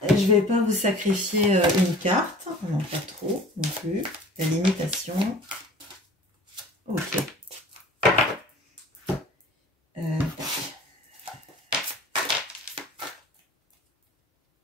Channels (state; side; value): normal; both; correlation 0.45